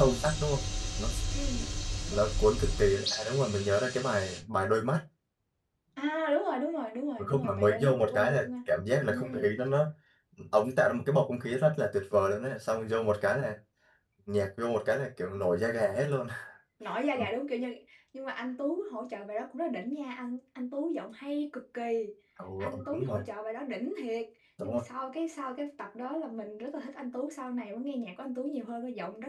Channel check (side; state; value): both; identical; correlation 1.00